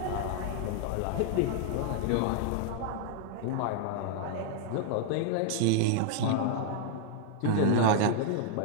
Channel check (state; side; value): different; both; correlation 0.00